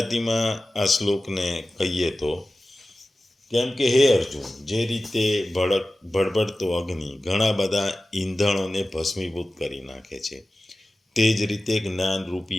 આ શ્લોકને કહીએ તો કેમ કે હે અર્જુન, જે રીતે ભડભડતો અગ્નિ ઘણા બધા ઈંધણોને ભસ્મીભૂત કરી નાખે છે, તે જ રીતે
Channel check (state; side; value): normal; both; correlation 0.96